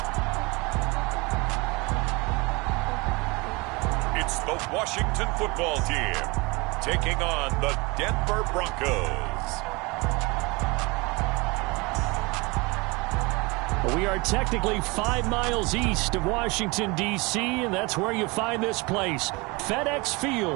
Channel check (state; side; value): quieter; left; 25.8 dB